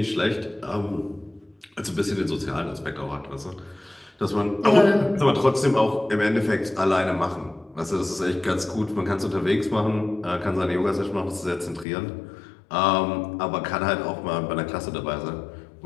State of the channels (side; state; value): right; drops out; at 11.9 s